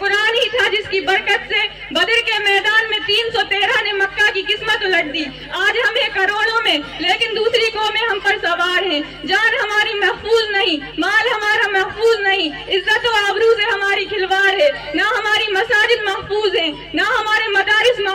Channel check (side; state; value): both; identical; correlation 1.00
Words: ہی تھا جس کی برکت سے بدر کے میدان میں 313 نے مکہ کی قسمت الٹ دی۔ آج ہمیں کروڑوں میں، لیکن دوسری قوم ہم پر سوار ہیں۔ جان ہماری محفوظ نہیں، مال ہمارا محفوظ نہیں، عزت و آبرو سے ہماری کھلواڑ ہے، نہ ہماری مساجد محفوظ ہیں، نہ ہمارے مدارس